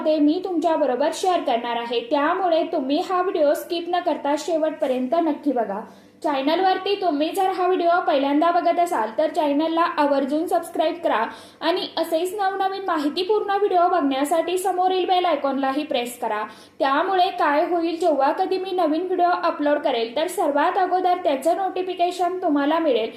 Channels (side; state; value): both; identical; correlation 1.00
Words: मी तुमच्या बरोबर शेअर करणार आहे. त्यामुळे तुम्ही हा व्हिडिओ स्किप न करता शेवटपर्यंत नक्की बघा. चॅनलवरती तुम्ही जर हा व्हिडिओ पहिल्यांदा बघत असाल तर चॅनलला आवर्जून सबस्क्राईब करा आणि असेच नवनवीन माहितीपूर्ण व्हिडिओ बघण्यासाठी समोरील बेल आयकॉनलाही प्रेस करा. त्यामुळे काय होईल, जेव्हा कधी मी नवीन व्हिडिओ अपलोड करेल तर सर्वात अगोदर त्याचं नोटिफिकेशन तुम्हाला मिळेल